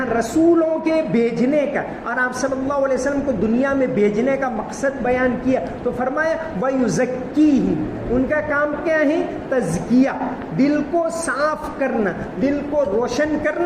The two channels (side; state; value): both; identical; correlation 1.00